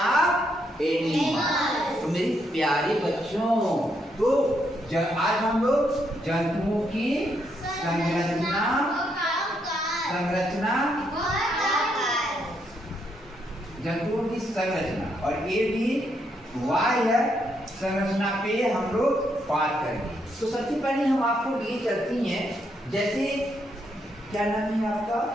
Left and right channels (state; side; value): normal; both; correlation 0.77